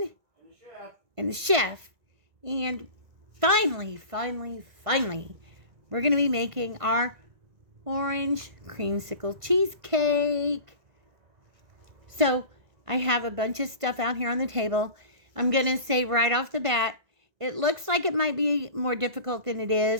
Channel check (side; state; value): left; late; 1.5 ms